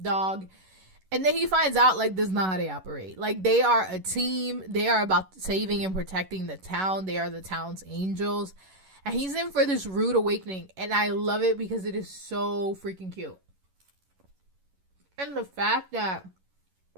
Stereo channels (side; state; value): left; late; 11 ms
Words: dog. And then he finds out, like, this is not how they operate. Like, they are a team. They are about saving and protecting the town. They are the town's angels. And he's in for this rude awakening. And I love it because it is so freaking cute. And the fact that